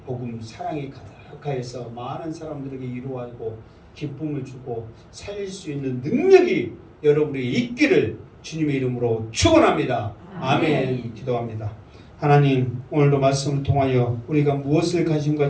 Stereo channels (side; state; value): both; identical; correlation 1.00